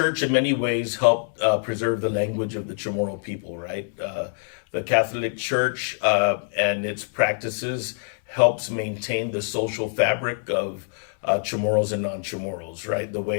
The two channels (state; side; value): silent; right; 62 dB below the other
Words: in many ways helped preserve the language of the Chamorro people, right? The Catholic Church and its practices helps maintain the social fabric of Chamorros and non-Chamorros, right? The